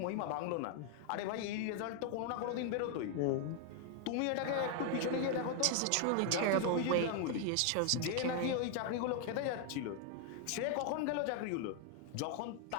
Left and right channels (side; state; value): both; different; correlation 0.00